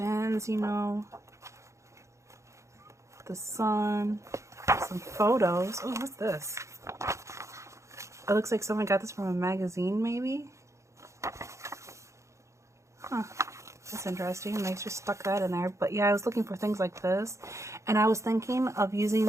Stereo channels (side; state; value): left; late; 0.14 ms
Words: you know. The sun. Some photos. Oh, what's this? It looks like someone got this from a magazine, maybe? Huh. That's interesting. They just stuck that in there. But yeah, I was looking for things like this. And I was thinking of using